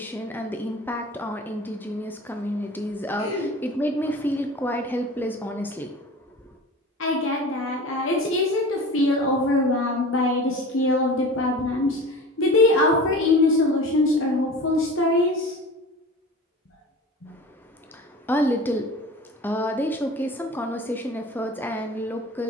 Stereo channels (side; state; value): both; normal; correlation 0.36